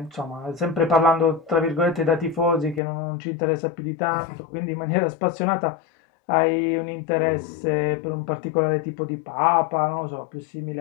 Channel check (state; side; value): drops out; right; at 2.8 s